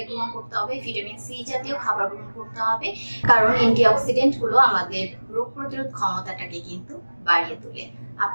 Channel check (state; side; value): inverted; both; correlation -1.00